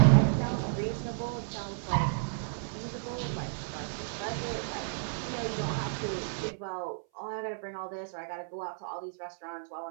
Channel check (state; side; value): silent; left; 56 dB below the other